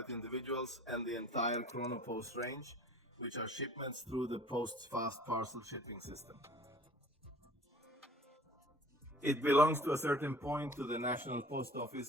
individuals, and the entire Chronopost range, which are shipments through the Post's fast parcel shipping system. It belongs to a certain point to the National Post Office,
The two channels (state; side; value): normal; both; correlation 0.48